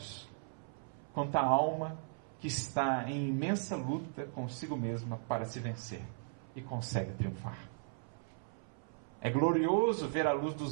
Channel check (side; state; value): left; silent; 53 dB below the other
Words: quanto a alma que está em imensa luta consigo mesma para se vencer e consegue triunfar. É glorioso ver a luz